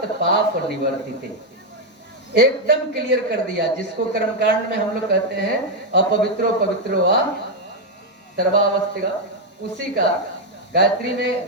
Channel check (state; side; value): normal; both; correlation 0.02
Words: पाप निवर्तिते। एकदम क्लियर कर दिया, जिसको कर्मकांड में हम लोग कहते हैं अपवित्रो पवित्रो वा सर्वावस्थिका, उसी का गायत्री में,